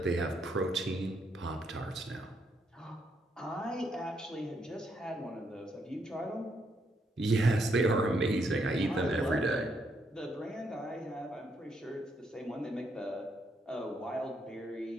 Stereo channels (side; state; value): both; normal; correlation 0.76